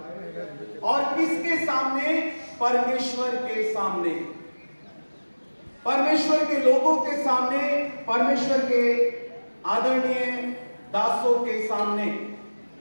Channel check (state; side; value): inverted; both; correlation -1.00